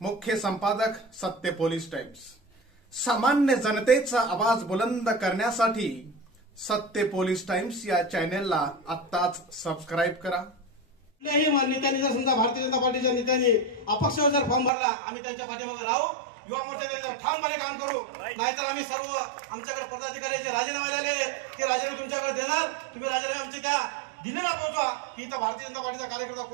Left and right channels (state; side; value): drops out; left; at 14.7 s